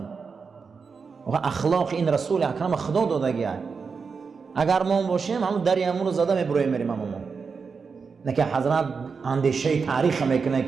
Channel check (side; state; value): left; quieter; 5.3 dB